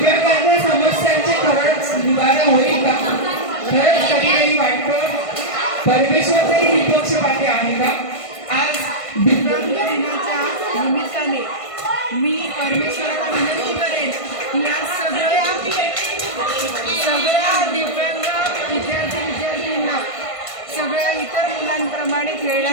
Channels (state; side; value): late; right; 1.5 ms